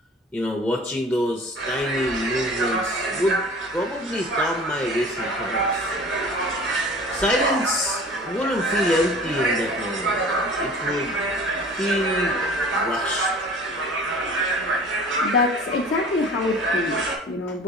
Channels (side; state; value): both; normal; correlation 0.44